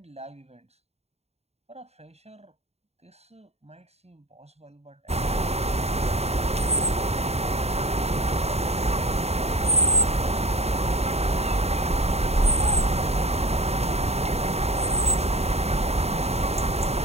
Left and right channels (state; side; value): late; left; 0.30 ms